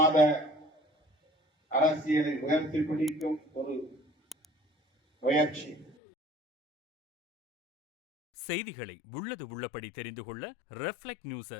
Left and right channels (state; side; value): drops out; right; at 6.0 s